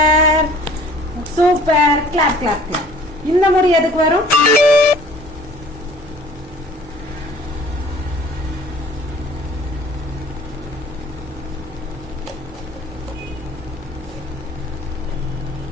super, clap clap clap. இந்த முறை எதுக்கு வரும்?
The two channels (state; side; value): normal; both; correlation 0.51